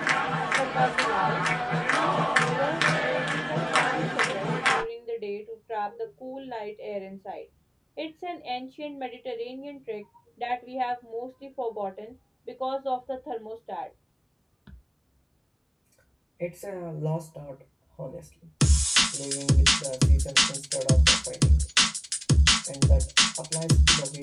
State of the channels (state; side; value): identical; both; correlation 1.00